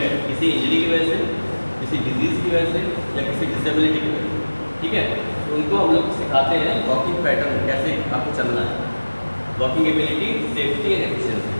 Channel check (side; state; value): both; inverted; correlation -1.00